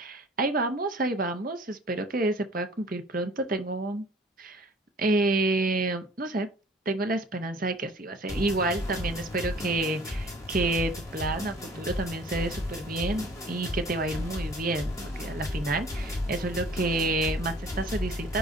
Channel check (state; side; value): normal; both; correlation 0.51